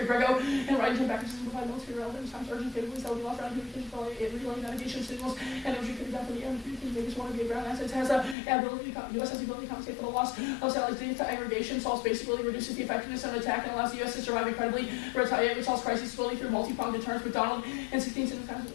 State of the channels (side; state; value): right; drops out; at 8.3 s